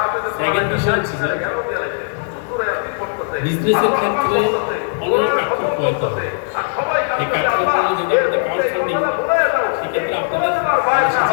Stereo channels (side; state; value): right; silent; 61 dB below the other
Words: সেকেন্ড বিষয় হচ্ছে যে বিজনেসের ক্ষেত্রে অনেক কাটকট হয়তো হয়। এই কাটকট যেটা আমাদের ক্রাউড ফান্ডিং, সেক্ষেত্রে আপনাদের